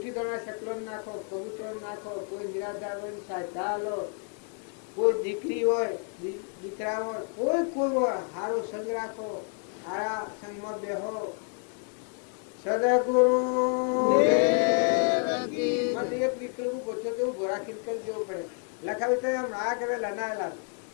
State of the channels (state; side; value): quieter; right; 36.0 dB